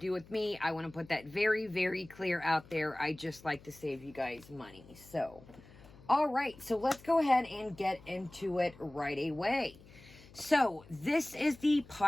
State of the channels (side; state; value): left; noise; hum, 22 dB below the sound